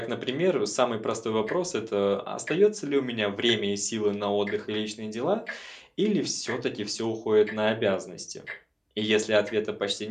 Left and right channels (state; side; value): identical; both; correlation 1.00